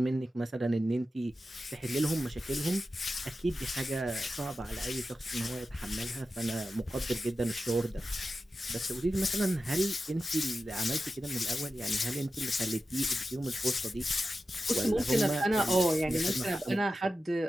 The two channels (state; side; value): normal; both; correlation 0.92